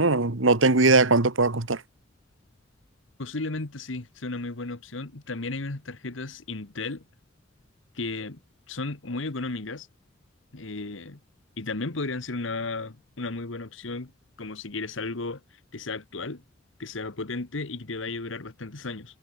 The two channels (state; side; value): normal; both; correlation -0.12